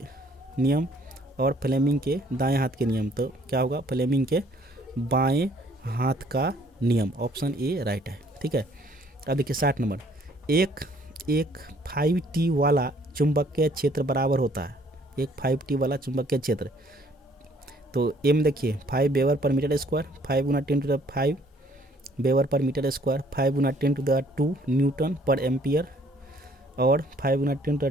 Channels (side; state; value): both; normal; correlation 0.61